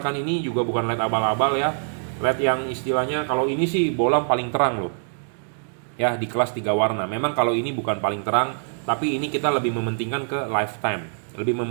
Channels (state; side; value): silent; left; digital silence